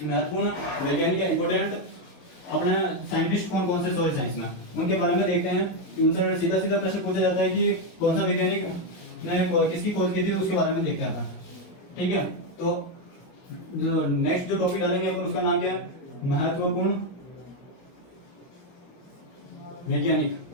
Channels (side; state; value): right; late; 22 ms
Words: महत्वपूर्ण वैज्ञानिक या इंपोर्टेंट अपने साइंटिस्ट कौन कौन से सॉइल साइंस में, उनके बारे में देखते हैं कि उनसे सीधा सीधा प्रश्न पूछा जाता है कि कौन सा वैज्ञानिक ने किसकी खोज की थी, उसके बारे में देखते हैं अपन, ठीक है। तो जो नेक्स्ट जो टॉपिक डालेंगे अपन उसका नाम क्या है, महत्वपूर्ण वैज्ञानिक।